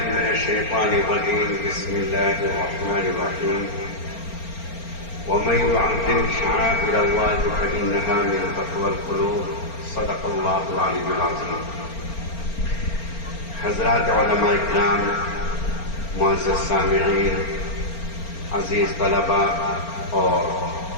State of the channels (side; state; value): right; late; 4.4 ms